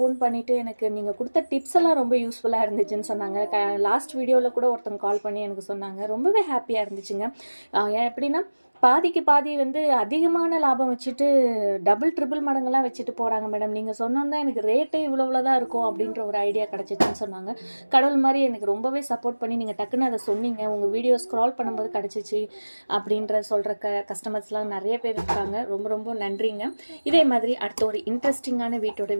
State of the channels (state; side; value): inverted; both; correlation -1.00